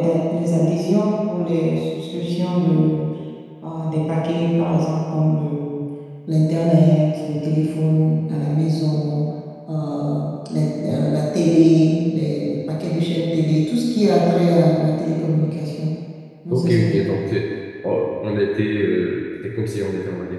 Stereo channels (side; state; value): both; identical; correlation 1.00